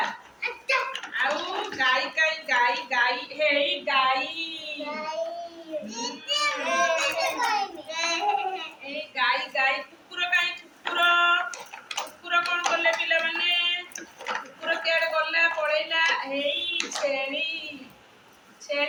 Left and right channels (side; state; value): both; identical; correlation 1.00